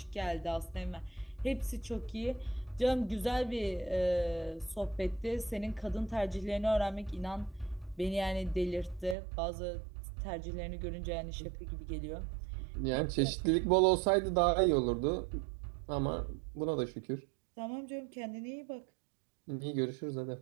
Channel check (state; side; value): drops out; left; at 9.2 s